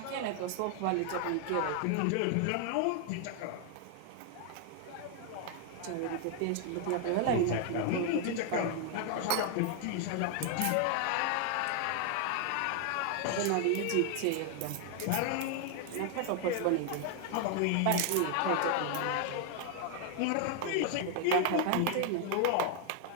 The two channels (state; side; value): different; both; correlation 0.00